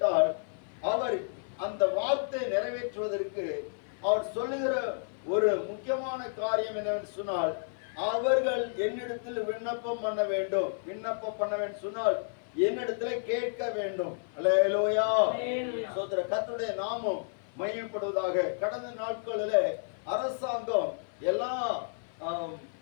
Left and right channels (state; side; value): silent; right; 57 dB below the other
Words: அவர் அந்த வார்த்தை நிறைவேற்றுவதற்கு அவர் சொல்லுகிற ஒரு முக்கியமான காரியம் என்னவென்று சொன்னால், அவர்கள் என்னிடத்தில் விண்ணப்பம் பண்ண வேண்டும். விண்ணப்பம் பண்ண வேண்டும் சொன்னால் என்னிடத்துல கேட்க வேண்டும். அல்லேலூயா. சோதர கர்த்தருடைய நாமம் மகிமைப்படுவதாக. கடந்த நாட்களில் அரசாங்கம்